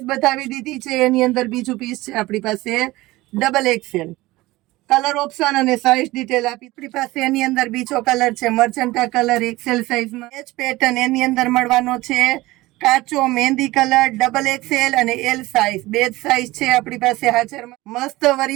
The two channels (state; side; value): quieter; left; 19.2 dB